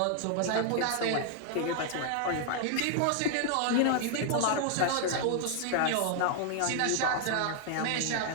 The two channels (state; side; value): different; both; correlation 0.00